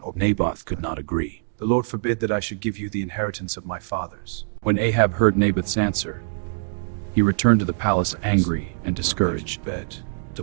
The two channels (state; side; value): silent; left; digital silence